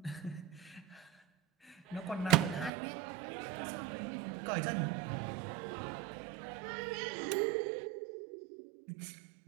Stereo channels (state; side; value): drops out; left; at 2.7 s